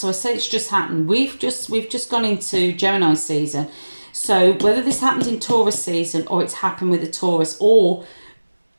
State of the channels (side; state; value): both; inverted; correlation -1.00